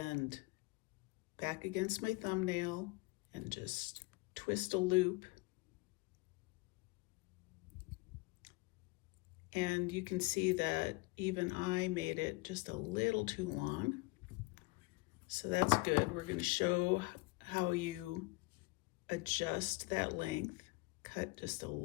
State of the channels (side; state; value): right; quieter; 24.9 dB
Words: back against my thumbnail and just twist a loop. And you can see that even I made it just a little too long. So that's good. We're going to show how you adjust that length. Cut just a